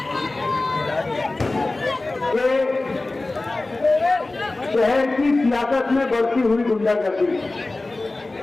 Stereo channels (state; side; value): quieter; right; 3.1 dB